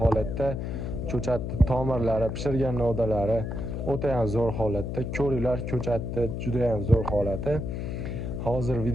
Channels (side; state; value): left; noise; hum, 4 dB below the sound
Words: ko'chatni tomirlari, pishirgan novdalari o'ta ham zo'r holatda. Ko'ringlar, ko'chatni juda ham zo'r holati. Hozir